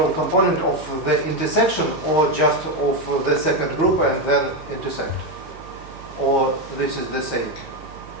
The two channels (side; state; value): right; noise; hum, 19 dB below the sound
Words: component of the intersection, or just of the second group and then intersect, or this is the same?